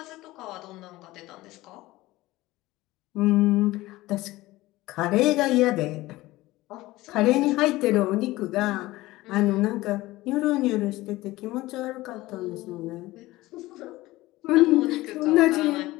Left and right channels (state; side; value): quieter; right; 18.4 dB